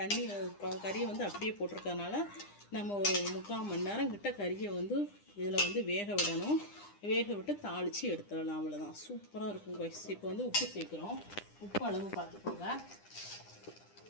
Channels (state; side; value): late; right; 9.9 ms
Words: தண்ணி கறியை வந்து அப்படியே போட்டிருக்கறனால நம்ம ஒரு 3/4 மணி நேரம் கிட்ட கறியை வந்து இதில் வந்து வேக விடணும். வேக விட்டு தாளித்து எடுத்துடலாம். அவ்வளோதான், சூப்பராக இருக்கும் காய்ஸ். இப்போ வந்து உப்பு சேர்க்குறோம். உப்பு அளவு பார்த்துக்கோங்க.